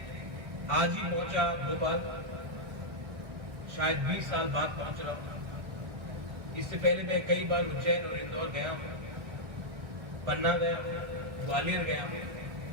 आज ही पहुंचा भोपाल, शायद 20 साल बाद पहुंच रहा हूं। इससे पहले मैं कई बार उज्जैन और इंदौर गया हूं, पन्ना गया हूं, ग्वालियर गया हूं,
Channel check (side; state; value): left; late; 1.3 ms